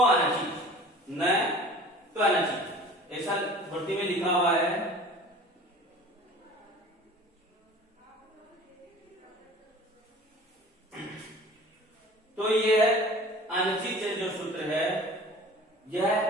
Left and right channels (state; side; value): normal; both; correlation 0.44